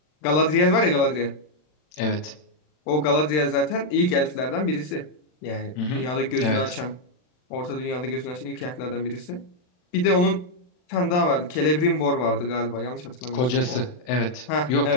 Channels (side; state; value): right; late; 40 ms